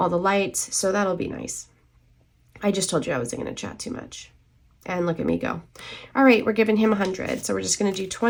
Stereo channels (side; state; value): both; identical; correlation 1.00